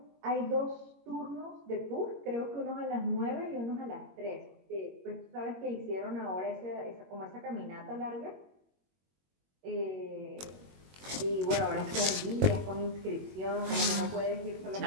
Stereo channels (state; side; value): late; left; 21 ms